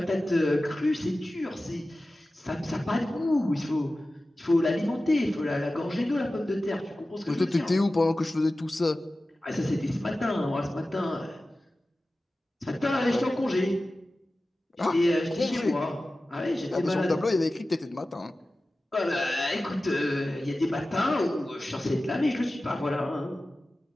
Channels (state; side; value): normal; both; correlation 0.95